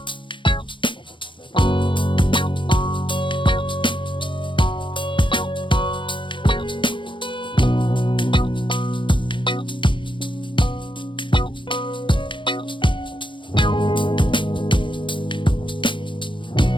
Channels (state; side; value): late; right; 0.24 ms